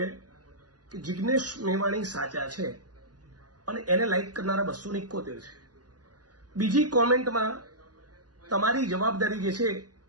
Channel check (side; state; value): left; late; 0.69 ms